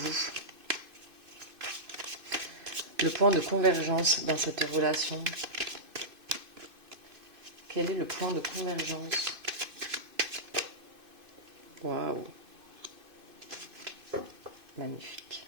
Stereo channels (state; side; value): late; left; 2.5 ms